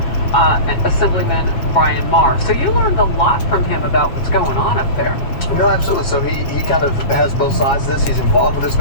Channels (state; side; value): late; right; 7.8 ms